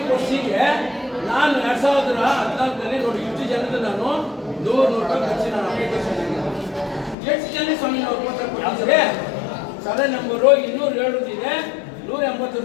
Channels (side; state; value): right; drops out; at 7.2 s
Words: ನಾನು 2014ರಲ್ಲಿ ನೋಡಿ ಇಷ್ಟು ಜನದ ನಾನು 100 ರೂಪಾಯಿ ಖರ್ಚು ನಾನು ಅಪ್ಲಿಕೇಶನ್ ಎಷ್ಟು ಜನ ಸ್ವಾಮಿ ನಾವು ಕೊಟ್ಟಿದ್ರೆ? ಸರ್ವೆ ನಂಬರು 207 ಇದೆ,